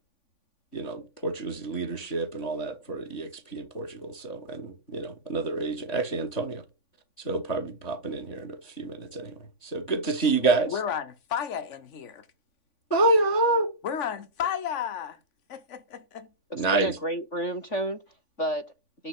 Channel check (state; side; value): late; right; 3.5 ms